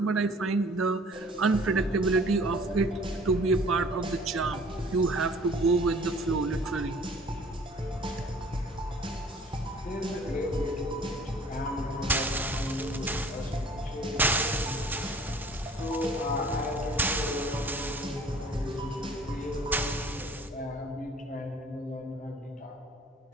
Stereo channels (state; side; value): normal; both; correlation 0.51